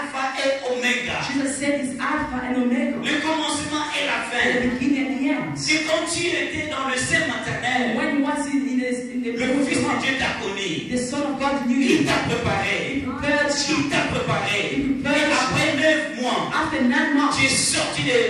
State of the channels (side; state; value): both; identical; correlation 1.00